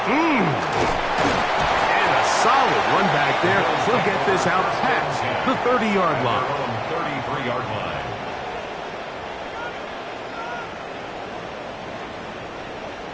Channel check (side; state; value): both; identical; correlation 1.00